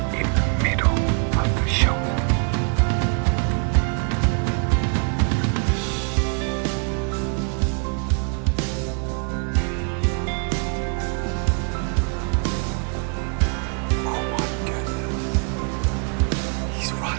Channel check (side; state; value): left; quieter; 38.9 dB